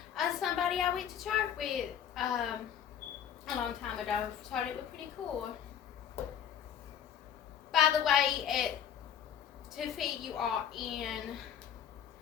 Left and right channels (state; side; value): quieter; right; 9.0 dB